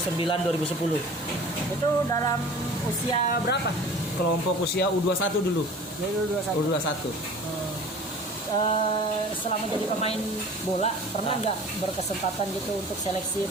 Itu dalam usia berapa? Kelompok usia U21 dulu. Dari 21. U21. Selama jadi pemain bola pernah nggak berkesempatan gitu untuk seleksi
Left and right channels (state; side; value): normal; both; correlation 0.43